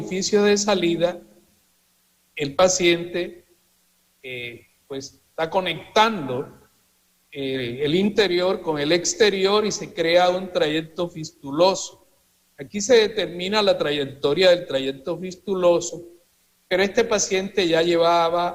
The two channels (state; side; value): identical; both; correlation 1.00